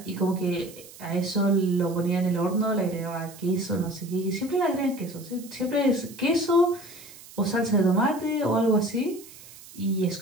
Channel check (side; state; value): right; noise; hiss, 19 dB below the sound